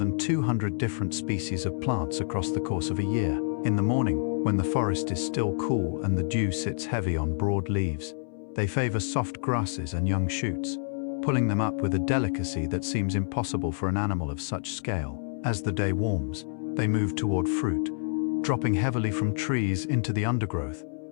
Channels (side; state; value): right; silent; 59 dB below the other